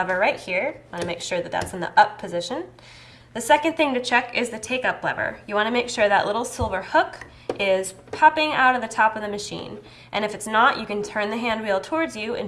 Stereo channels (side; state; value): both; identical; correlation 1.00